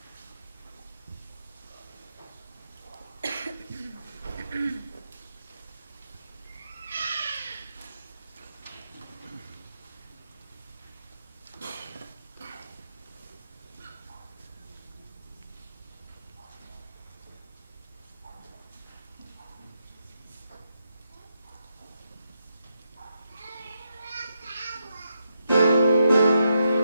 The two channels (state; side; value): inverted; both; correlation -0.83